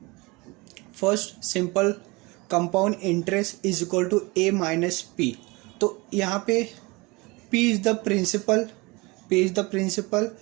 First simple, compound interest is equal to A minus P. तो यहाँ पे P is the principal,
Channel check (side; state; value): left; quieter; 25.0 dB